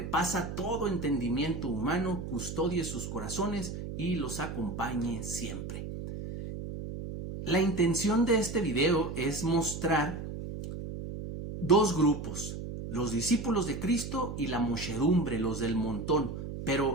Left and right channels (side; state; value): right; noise; hum, 7 dB below the sound